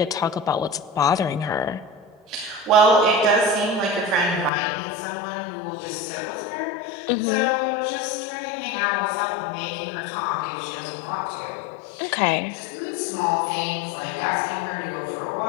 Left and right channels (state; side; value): drops out; right; at 4.5 s